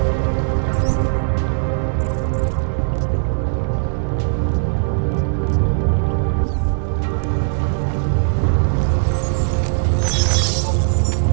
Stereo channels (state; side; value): silent; left; digital silence